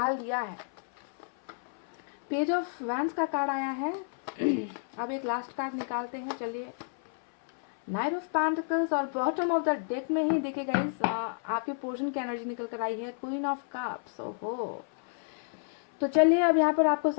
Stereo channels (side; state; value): right; silent; 57 dB below the other